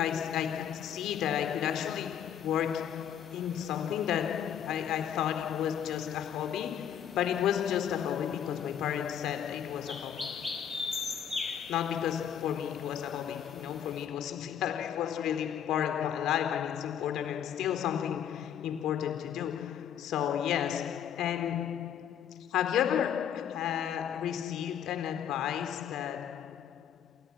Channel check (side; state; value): right; quieter; 9.1 dB